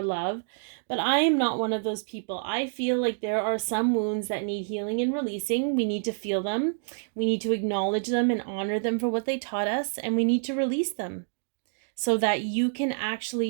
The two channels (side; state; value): left; silent; digital silence